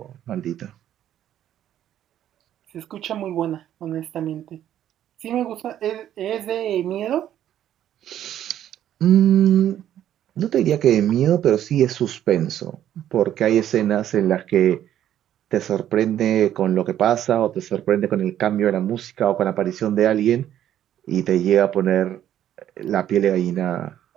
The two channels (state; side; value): quieter; left; 11.3 dB